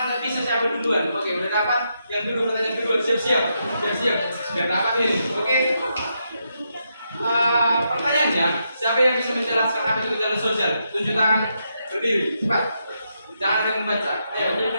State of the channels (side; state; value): both; inverted; correlation -0.82